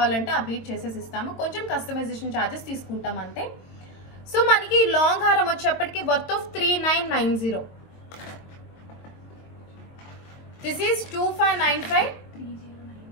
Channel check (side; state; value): right; late; 22 ms